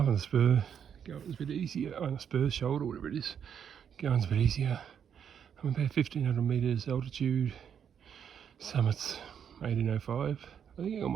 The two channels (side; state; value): left; quieter; 8.1 dB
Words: on the spur, going's a bit easier. On the spur shoulder, whatever it is, going's a bit easier. I'm about 1500 metres altitude. Summit's 1805. I think I can